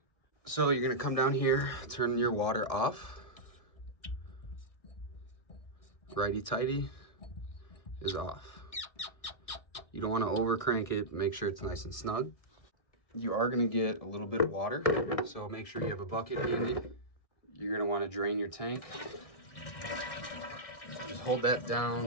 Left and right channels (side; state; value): right; late; 1.6 ms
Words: So you're going to come down here, turn your water off. Righty-tighty is off. You don't want to over crank it, make sure it's nice and snug. You are going to get a little bit of water, so make sure you have a bucket handy. You're going to want to drain your tank. So just hold that